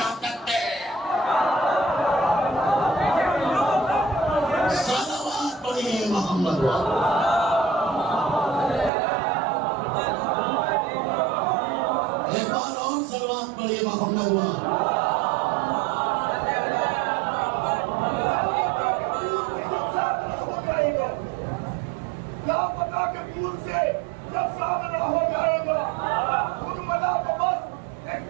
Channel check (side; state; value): left; drops out; at 8.9 s